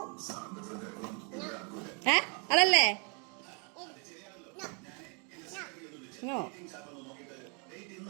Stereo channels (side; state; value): left; quieter; 36.2 dB